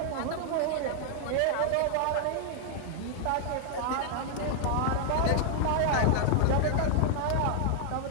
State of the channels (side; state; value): both; different; correlation 0.00